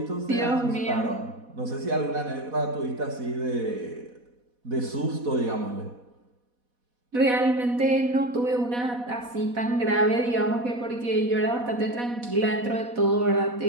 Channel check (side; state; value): left; late; 4.1 ms